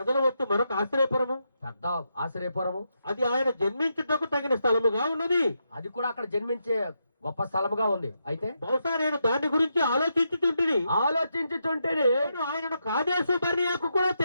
వస్తు మరొక ఆశ్రయపురము, పెద్ద ఆశ్రయపురము. అది ఆయన జన్మించుటకు తగిన స్థలముగా ఉన్నది. అది కూడా అక్కడ జన్మించే గొప్ప స్థలముగా ఉంది. అయితే బహుశా నేను దాని గురించి ఆలోచించుతుంటే ఆయనను కాదేశు బర్నియాకు కూడా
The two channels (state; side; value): inverted; both; correlation -0.83